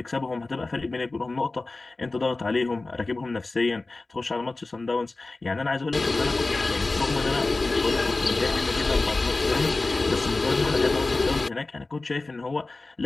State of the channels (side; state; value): right; quieter; 3.3 dB